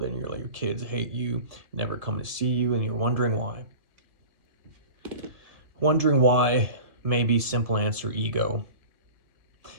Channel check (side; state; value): left; late; 1.7 ms